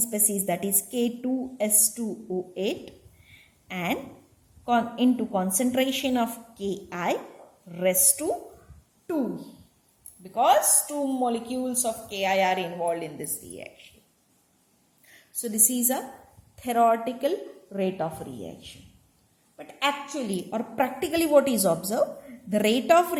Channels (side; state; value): both; identical; correlation 1.00